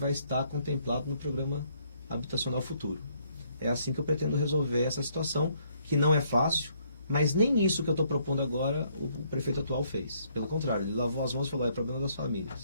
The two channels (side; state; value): both; inverted; correlation -0.68